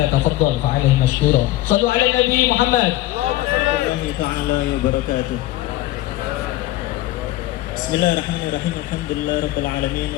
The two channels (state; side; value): quieter; right; 16.1 dB